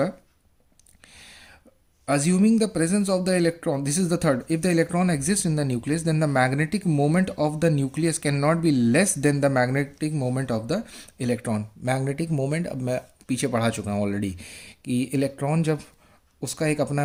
assuming the presence of the electron, this is the third, if the electron exists in the nucleus then the magnetic moment of the nucleus cannot be less than the magnetic moment of the electron. magnetic moment, अब मैं पीछे पढ़ा चुका हूँ already कि electron जब उसका एक अपना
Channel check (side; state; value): both; identical; correlation 1.00